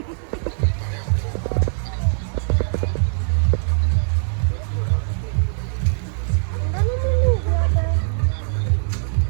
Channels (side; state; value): left; silent; digital silence